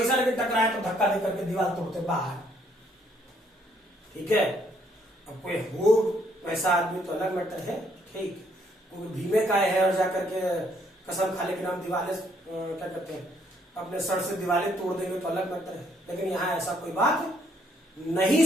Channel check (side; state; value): both; normal; correlation 0.68